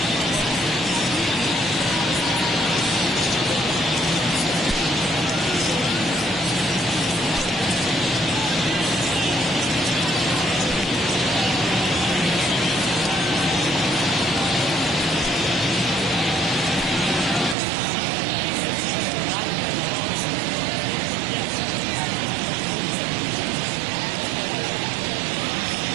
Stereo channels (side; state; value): left; drops out; at 17.6 s